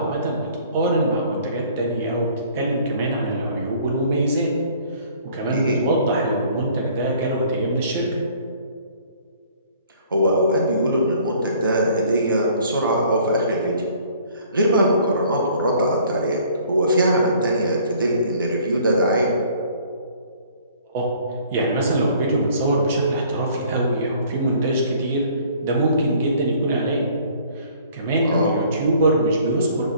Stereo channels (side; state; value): both; inverted; correlation -0.56